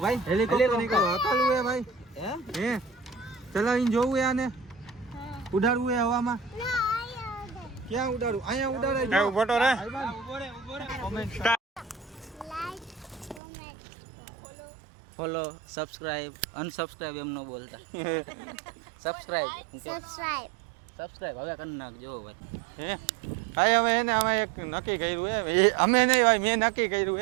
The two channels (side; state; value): left; drops out; at 13.4 s